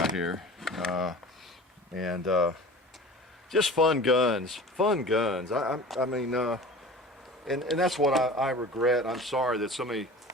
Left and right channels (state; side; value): normal; both; correlation 0.39